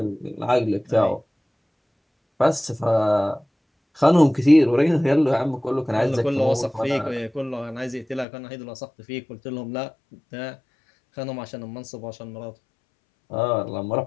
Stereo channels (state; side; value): drops out; right; at 8.2 s